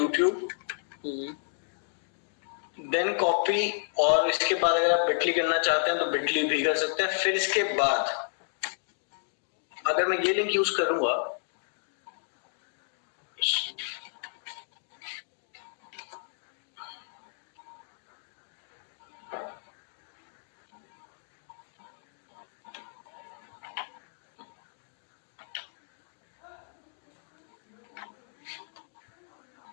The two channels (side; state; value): right; silent; digital silence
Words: देन कॉपी, और इसके बाद अगर आप बिटली करना चाहते हैं तो बिटली भी कर सकते हैं। फिर इसके बाद अगर मैं ये लिंक यूज करूंगा,